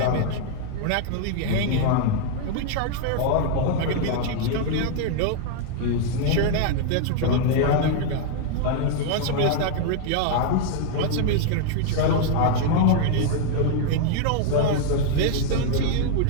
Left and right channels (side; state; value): both; different; correlation 0.00